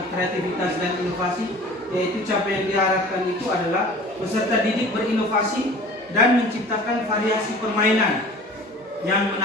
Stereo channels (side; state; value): both; normal; correlation 0.43